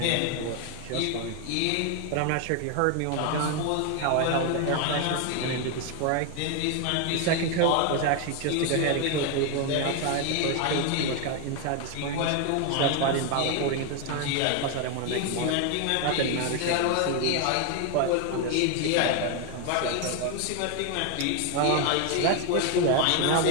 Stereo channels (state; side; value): different; both; correlation 0.01